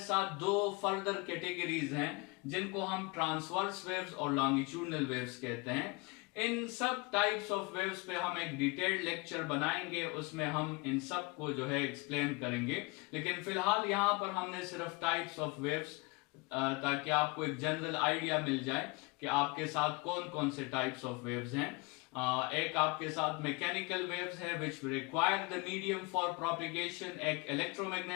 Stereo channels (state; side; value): quieter; right; 27.0 dB